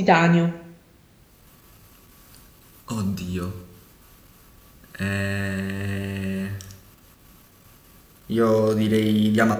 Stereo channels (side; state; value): both; identical; correlation 1.00